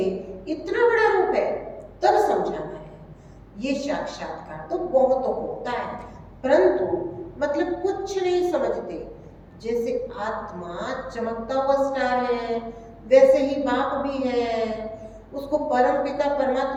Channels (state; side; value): identical; both; correlation 1.00